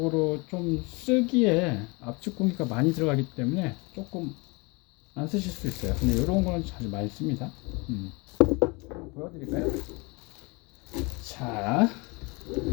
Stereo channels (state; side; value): quieter; right; 27.6 dB